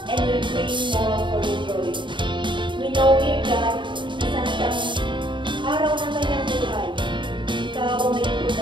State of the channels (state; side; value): late; left; 0.23 ms